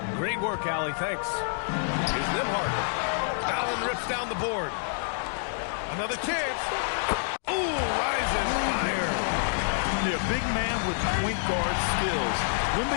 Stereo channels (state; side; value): silent; right; digital silence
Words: Great work, Allie. Thanks. Here's Nembhard. Allen rips down the board. Another chance. Ooh, rise and fire. Yeah, big man with point guard skills.